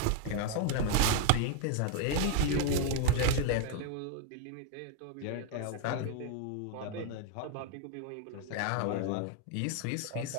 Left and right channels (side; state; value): both; different; correlation 0.00